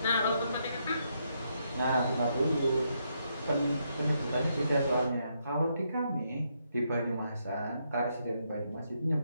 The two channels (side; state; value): both; inverted; correlation -0.78